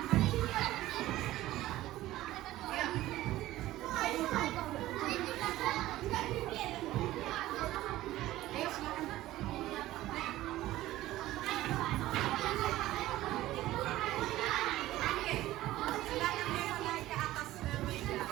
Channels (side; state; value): left; quieter; 15.8 dB